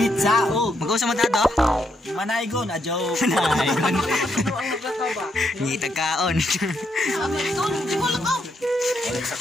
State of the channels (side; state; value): both; normal; correlation 0.78